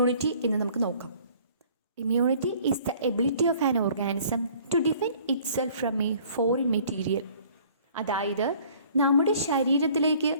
എന്ന് നമുക്ക് നോക്കാം. Immunity is the ability of an organism to defend itself from a foreign material. അതായത് നമ്മുടെ ശരീരത്തിലേക്ക്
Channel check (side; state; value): both; inverted; correlation -0.54